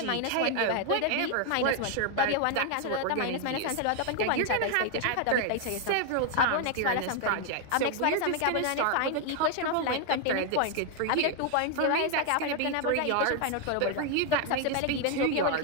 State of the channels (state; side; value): different; both; correlation 0.00